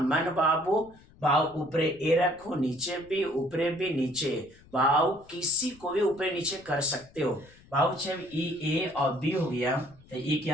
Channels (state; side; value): noise; left; rumble, 25 dB below the sound